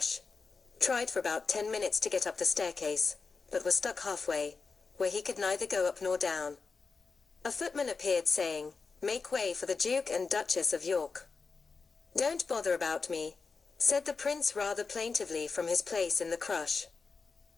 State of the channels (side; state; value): right; quieter; 4.6 dB